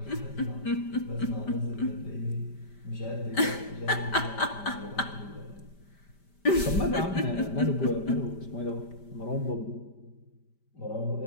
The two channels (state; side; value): late; right; 5.1 ms